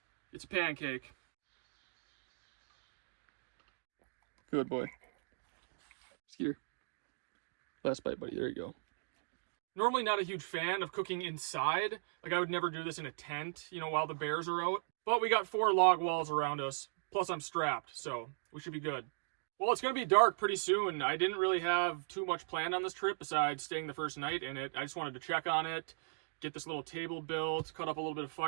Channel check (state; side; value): silent; left; digital silence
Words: it's a pancake. Good boy. Skeeter. Last bite, buddy. There you go. Normally not a huge fan of cooking inside. Like, I would never do this in a tent, you know, while the bears are out. But we got 4 log walls around us. Plus I'm strapped, so we should be good. Well, it's going to be dark pretty soon. I didn't really have too much planned on this trip besides staying the first night in it. I just wanted to check on it, get this little table built, cut up a little bit of